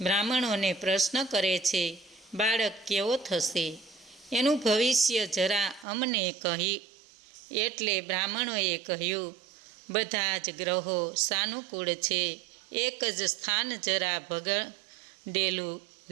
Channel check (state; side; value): drops out; left; at 5.9 s